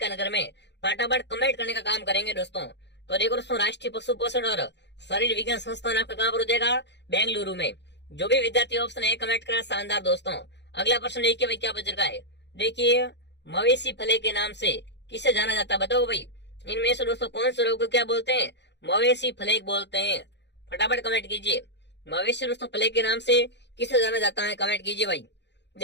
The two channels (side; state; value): right; late; 0.51 ms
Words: नगर में। फटाफट कमेंट करने का काम करेंगे दोस्तों। तो देखो दोस्तों राष्ट्रीय पशु पोषण और शरीर विज्ञान संस्थान आपका कहाँ पर हो जाएगा, बेंगलुरु में। जो भी विद्यार्थी ऑप्शन है कमेंट करा, शानदार दोस्तों। अगला प्रश्न देखिए भाई क्या पूछ रखा है, देखिए मवेशी फले के नाम से किसे जाना जाता है, बताओ भाई। इनमें से दोस्तों कौन से रोग को क्या बोलते हैं, मवेशी फ्लेग बोलते हैं। फटाफट कमेंट कीजिए, मवेशी दोस्तों फ्लेग के नाम से किसे जाना जाता है, कमेंट कीजिए भाई।